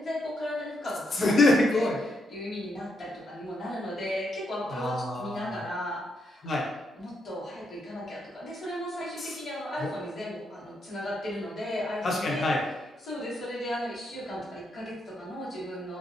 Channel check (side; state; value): both; normal; correlation 0.79